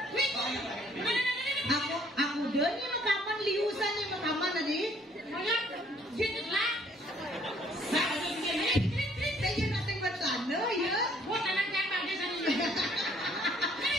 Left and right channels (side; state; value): both; normal; correlation 0.62